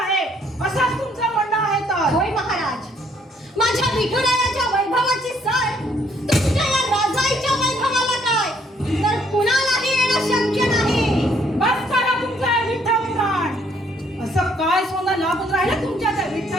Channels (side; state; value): both; normal; correlation 0.66